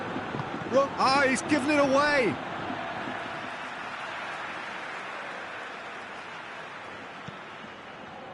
Ah, he's given it away.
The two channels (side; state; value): both; identical; correlation 1.00